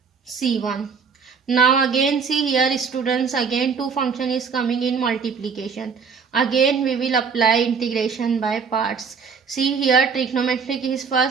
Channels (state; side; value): quieter; left; 5.8 dB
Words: c1. Now again see here students, again two function is coming in multiplication. Again we will apply integration by parts. See here trigonometric is